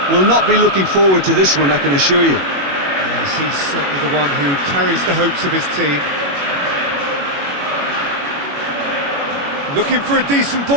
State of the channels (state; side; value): late; left; 21 ms